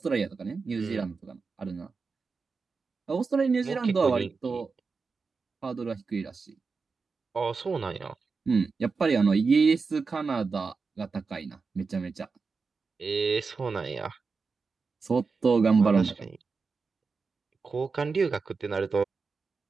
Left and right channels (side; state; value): left; quieter; 4.7 dB